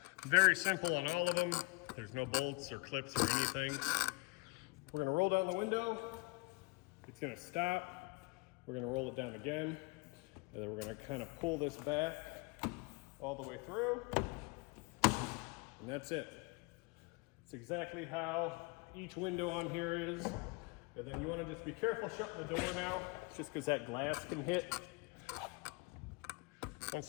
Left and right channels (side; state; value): right; quieter; 28.5 dB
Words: Very simple on all of them. There's no bolts or clips or anything. We're gonna roll down the window. It's gonna stop. We're gonna roll it down again. And then we're gonna kind of pull this back all the way through. And that's it. It's exactly how each window on here is. And then you wanna just be careful shutting the door now, just because that glass can hit. Once